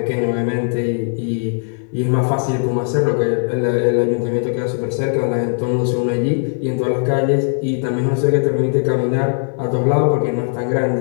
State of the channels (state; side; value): silent; right; digital silence